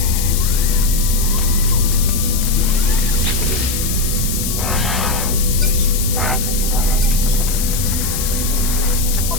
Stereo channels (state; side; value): noise; left; hiss, 4 dB below the sound